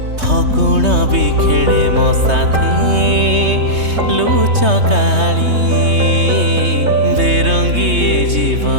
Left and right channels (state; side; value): late; left; 3.2 ms